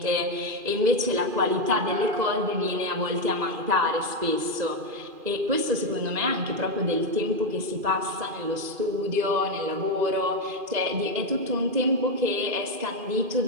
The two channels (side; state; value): left; late; 2.4 ms